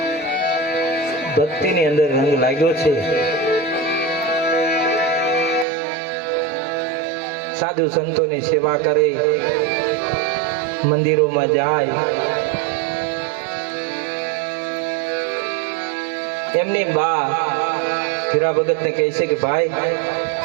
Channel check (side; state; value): left; drops out; at 5.7 s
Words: ભક્તિની અંદર રંગ લાગ્યો છે. સાધુ સંતોની સેવા કરે, મંદિરોમાં જાય. એમની બા ધીરા ભગતને કહે છે કે ભાઈ,